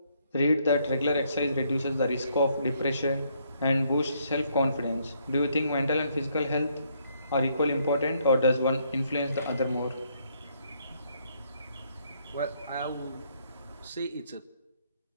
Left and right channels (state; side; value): inverted; both; correlation -0.71